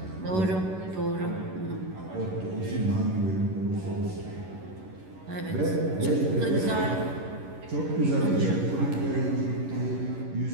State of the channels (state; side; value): late; left; 11 ms